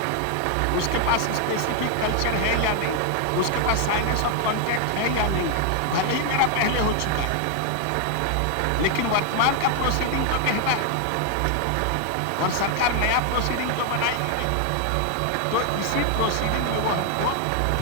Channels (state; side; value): different; both; correlation 0.00